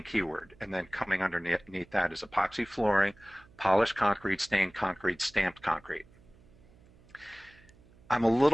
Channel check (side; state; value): right; noise; hum, 27 dB below the sound